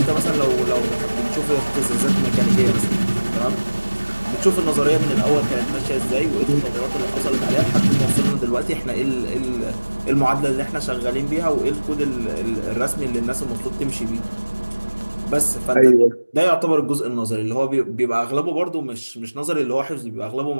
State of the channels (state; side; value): inverted; both; correlation -1.00